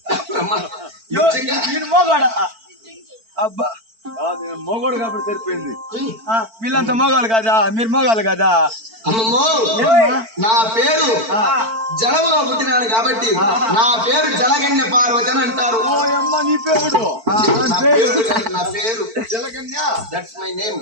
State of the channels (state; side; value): late; left; 4.5 ms